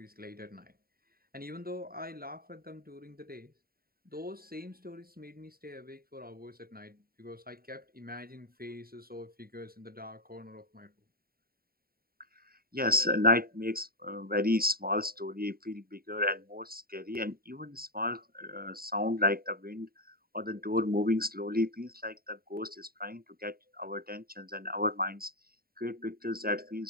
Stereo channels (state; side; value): late; left; 0.43 ms